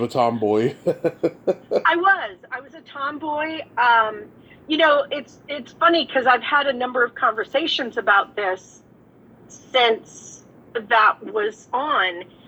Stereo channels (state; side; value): identical; both; correlation 1.00